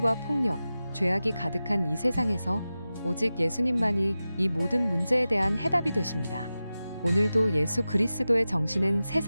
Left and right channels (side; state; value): both; inverted; correlation -0.94